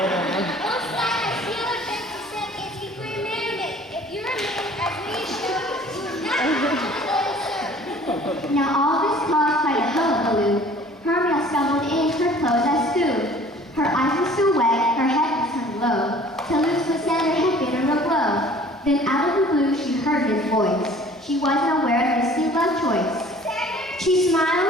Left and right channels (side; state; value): both; normal; correlation 0.50